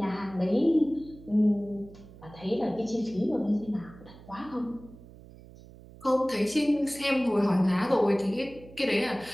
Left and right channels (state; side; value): noise; right; hum, 20 dB below the sound